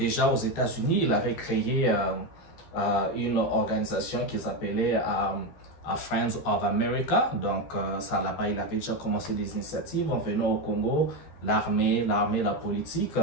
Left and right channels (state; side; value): late; right; 14 ms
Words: aux États-Unis, il avait créé une organisation qu'ils appelaient Friends of America. Donc, ça là-bas, il avait déjà commencé des initiatives en venant au Congo, l'armée, la politique.